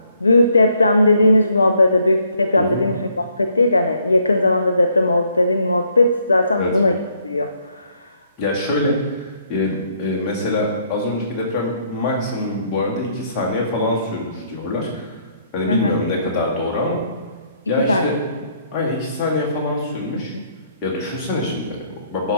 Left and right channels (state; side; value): inverted; both; correlation -0.68